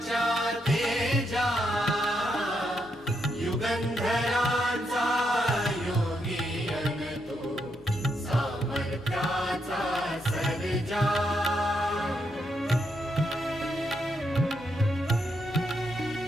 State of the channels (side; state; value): both; normal; correlation 0.80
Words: तेजा युगंधरांचा योगी अन तू सामर्थ्याचा